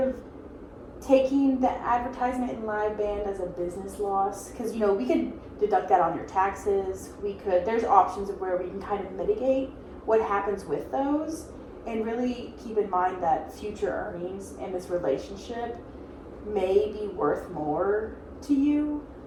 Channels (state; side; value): identical; both; correlation 1.00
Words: taking the advertisement and live band as a business loss, because, you know, we could deduct that on your taxes. There's options of where we can kind of mitigate what happens with those, and really keep in mind that future earnings and this relationship may be worth more to you